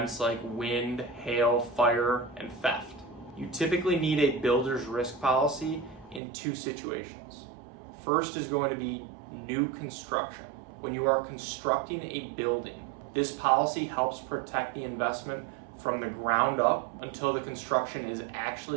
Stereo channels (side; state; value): left; drops out; at 6.2 s